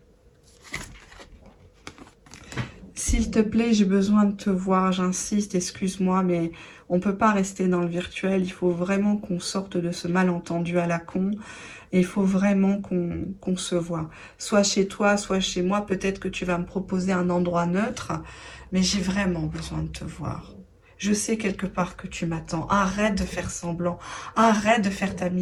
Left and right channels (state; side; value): identical; both; correlation 1.00